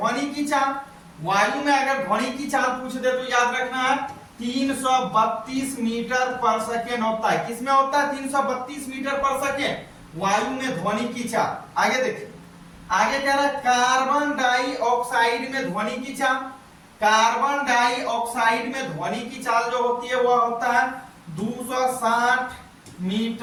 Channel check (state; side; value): identical; both; correlation 1.00